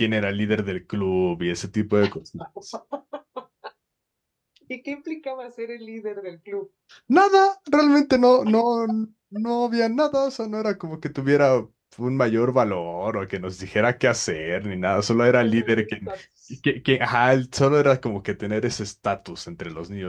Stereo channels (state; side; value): identical; both; correlation 1.00